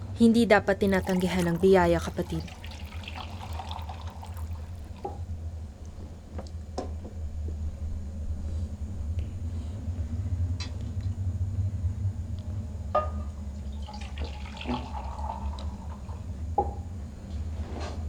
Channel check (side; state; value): both; identical; correlation 1.00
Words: Hindi dapat tinatanggihan ng biyaya, kapatid.